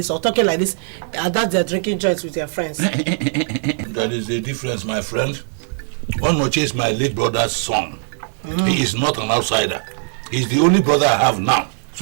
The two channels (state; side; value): silent; left; 66 dB below the other